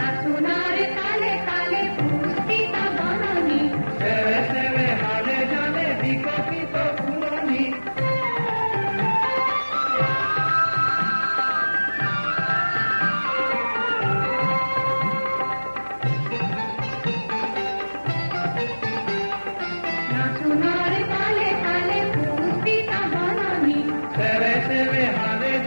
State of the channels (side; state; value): both; inverted; correlation -1.00